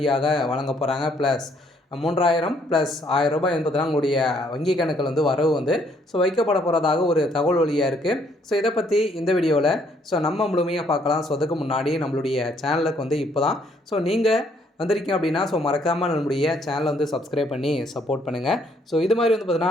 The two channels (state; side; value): normal; both; correlation 0.67